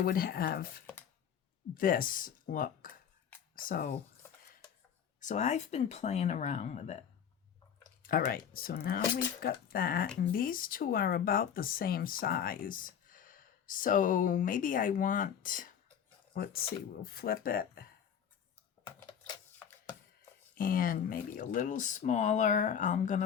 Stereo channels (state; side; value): quieter; right; 8.3 dB